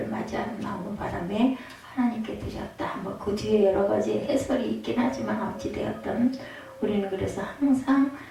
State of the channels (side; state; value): both; identical; correlation 1.00